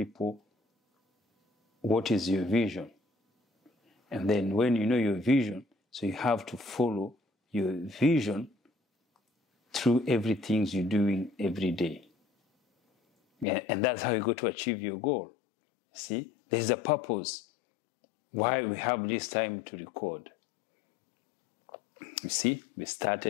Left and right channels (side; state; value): right; drops out; at 13.5 s